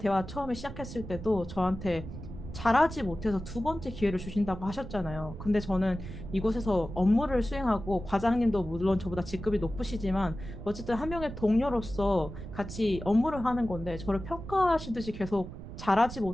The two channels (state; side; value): noise; right; rumble, 10 dB below the sound